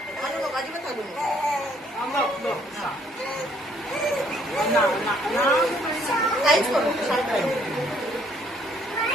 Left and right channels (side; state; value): both; normal; correlation 0.65